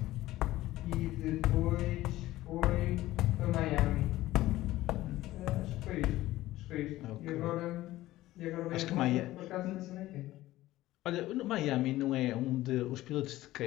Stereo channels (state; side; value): quieter; right; 16.2 dB